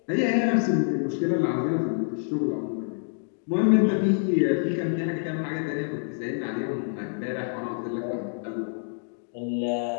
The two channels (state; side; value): silent; right; digital silence